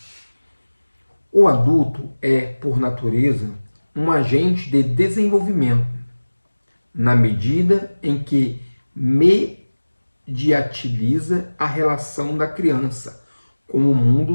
O adulto é, por natureza, um agente de desenvolvimento, na medida em que mediatiliza a relação da criança com o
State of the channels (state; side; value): inverted; both; correlation -1.00